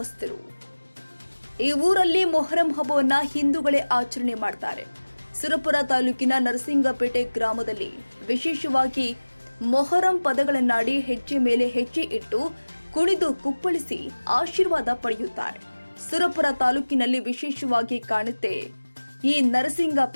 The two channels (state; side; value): inverted; both; correlation -1.00